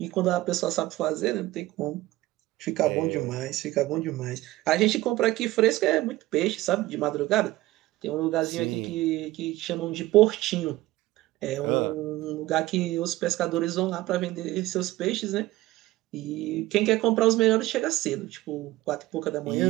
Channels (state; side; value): quieter; left; 17.6 dB